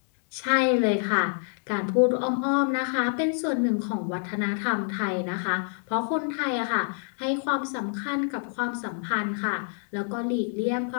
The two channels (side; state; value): right; silent; 60 dB below the other